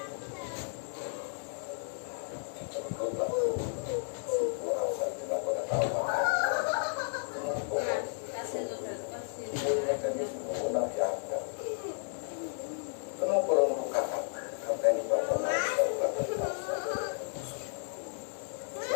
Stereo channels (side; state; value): right; silent; digital silence